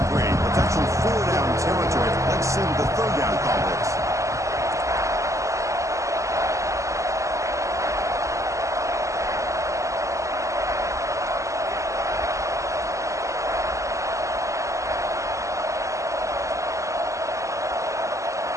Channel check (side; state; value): left; late; 0.15 ms